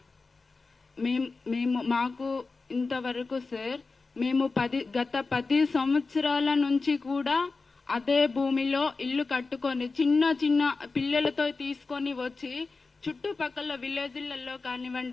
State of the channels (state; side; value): quieter; right; 4.0 dB